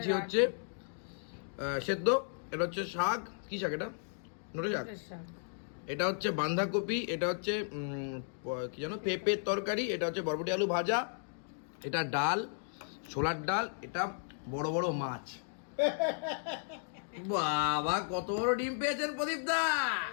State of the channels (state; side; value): silent; right; digital silence